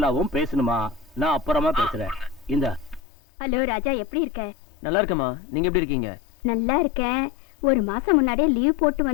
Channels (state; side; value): drops out; right; at 3.0 s